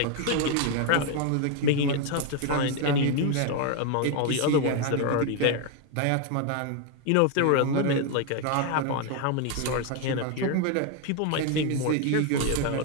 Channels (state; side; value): different; both; correlation 0.01